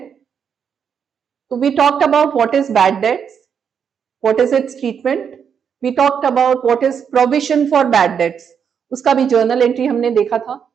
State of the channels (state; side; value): quieter; left; 7.4 dB